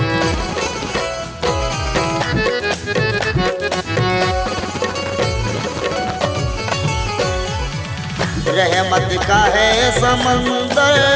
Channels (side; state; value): both; identical; correlation 1.00